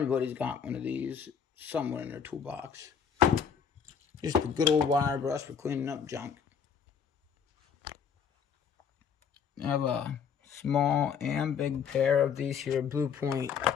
got one of these somewhere in their toolbox. Just a good old wire brush for cleaning up junk. I have a small and big pair of these here Blue Point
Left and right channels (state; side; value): quieter; right; 7.0 dB